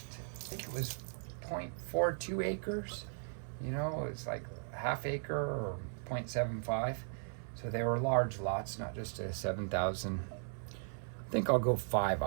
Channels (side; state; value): left; silent; 53 dB below the other